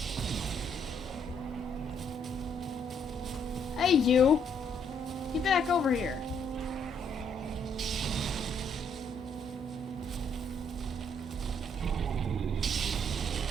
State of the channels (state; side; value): normal; both; correlation 0.69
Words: Hey, you! Get back over here.